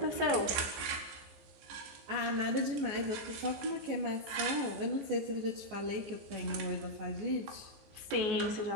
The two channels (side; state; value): left; late; 15 ms